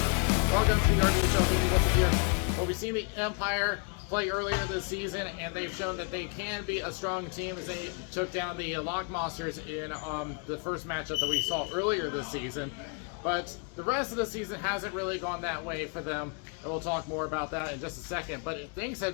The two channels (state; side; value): quieter; right; 37.6 dB